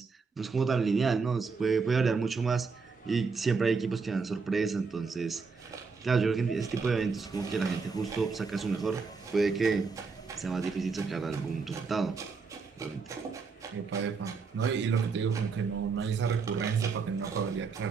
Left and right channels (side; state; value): left; quieter; 4.9 dB